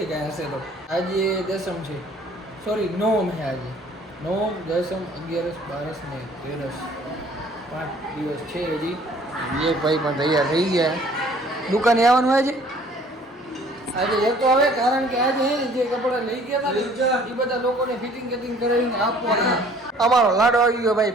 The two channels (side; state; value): both; normal; correlation 0.55